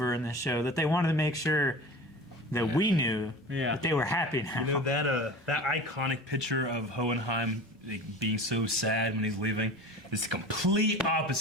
in the show that they wanted to make sure that we knew that they were happy now. You know that iconic picture of Hohenheim being so sad when he's leaving is the complete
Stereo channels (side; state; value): both; normal; correlation 0.36